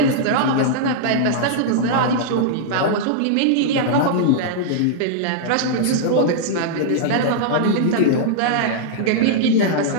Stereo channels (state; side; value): different; both; correlation -0.02